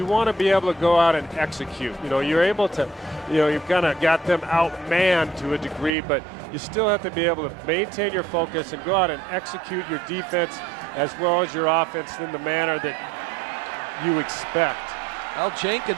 want to be able to go out and execute. You know, you're able to, you know, you've kind of got them outmanned to a degree, but you still have to be able to maintain your focus and go out and execute your defense as well as your offense in the manner that you expect. Well,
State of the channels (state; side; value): drops out; left; at 5.9 s